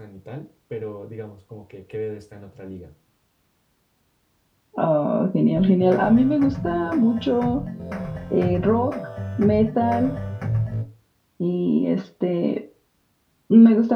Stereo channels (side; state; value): both; identical; correlation 1.00